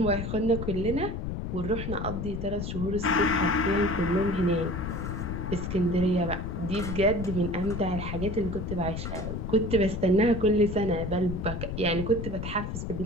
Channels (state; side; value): noise; left; rumble, 4 dB below the sound